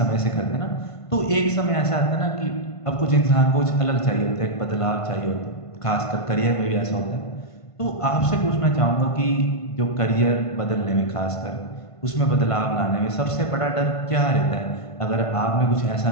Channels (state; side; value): late; right; 1.5 ms